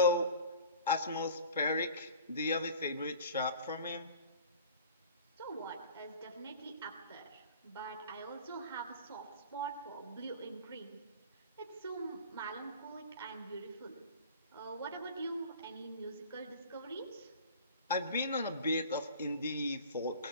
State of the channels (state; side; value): inverted; both; correlation -0.41